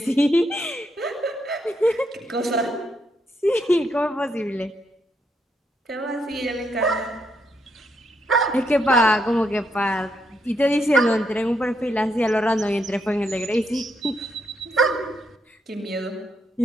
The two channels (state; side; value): normal; both; correlation 0.78